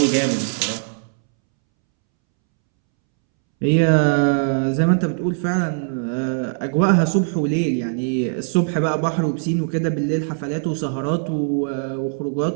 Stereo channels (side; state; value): left; silent; 65 dB below the other